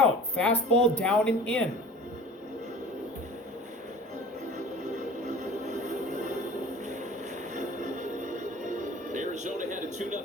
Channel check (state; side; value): normal; both; correlation 0.43